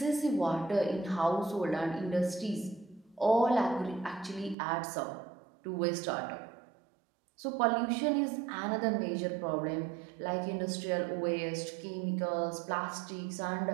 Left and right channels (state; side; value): drops out; left; at 4.5 s